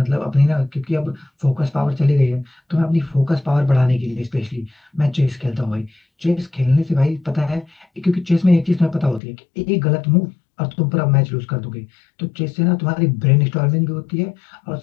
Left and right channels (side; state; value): right; drops out; at 9.2 s